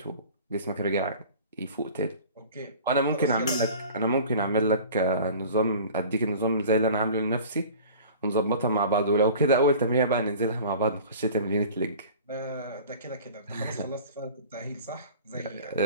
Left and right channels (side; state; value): both; inverted; correlation -0.43